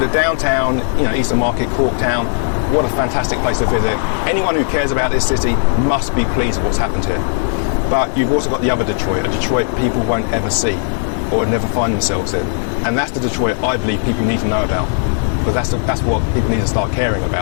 downtown, Eastern Market, Corktown. What a fantastic place to visit. Anyone who cares about this city must be pleased with what's happened here. But you've also got the other Detroit, a Detroit people won't ever see or never find themselves in. And that's the Detroit I believe people need to know about, because that's what people need to start caring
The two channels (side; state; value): right; silent; 68 dB below the other